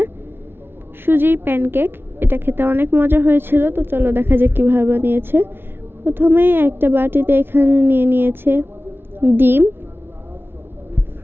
সুজির প্যানকেক, এটা খেতে অনেক মজা হয়েছিল। তো চলো দেখা যাক কীভাবে বানিয়েছে। প্রথমেই একটা বাটিতে এখানে নিয়ে নিয়েছে ডিম,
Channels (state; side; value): late; left; 0.11 ms